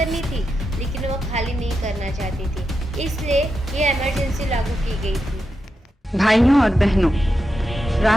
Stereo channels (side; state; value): both; normal; correlation 0.87